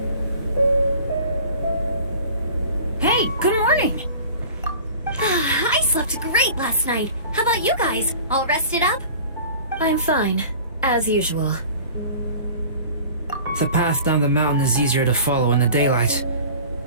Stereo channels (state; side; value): inverted; both; correlation -0.43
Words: Hey, good morning! I slept great last night. How about you guys? All rested up? I'm fine, as usual. The path down the mountain is easier to follow in the daylight.